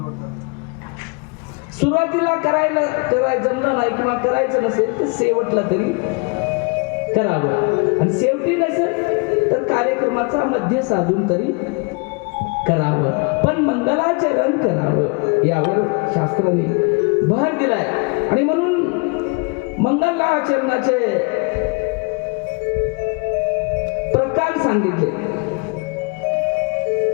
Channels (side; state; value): right; quieter; 31.5 dB